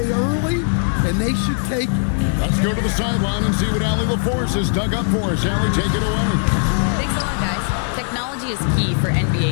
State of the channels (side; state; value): right; silent; 63 dB below the other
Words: early, and they should take it. Let's go to the sideline and see what Allie LaForce has dug up for us. Allie, take it away. Thanks a lot, guys. Technology is key for